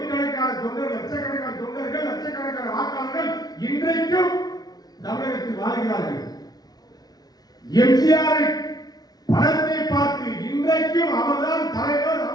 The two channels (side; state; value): right; late; 0.19 ms